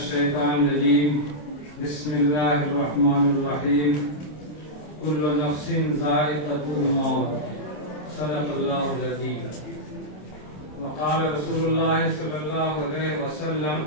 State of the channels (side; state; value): right; late; 27 ms